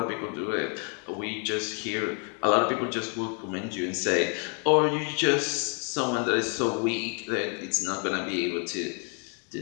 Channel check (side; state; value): right; quieter; 39.8 dB